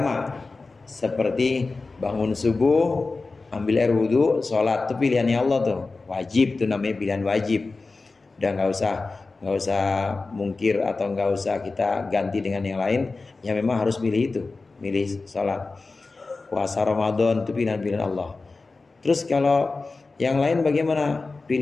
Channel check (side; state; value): right; quieter; 3.8 dB